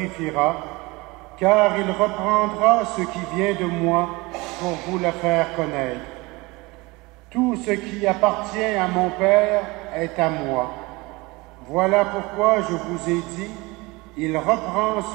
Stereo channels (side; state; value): left; quieter; 23.7 dB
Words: car il reprendra ce qui vient de moi pour vous le faire connaître. Tout ce qui appartient à mon Père est à moi. Voilà pourquoi je vous ai dit, il reprend